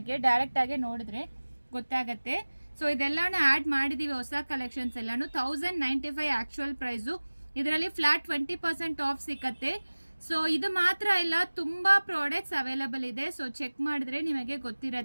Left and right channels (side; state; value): both; inverted; correlation -1.00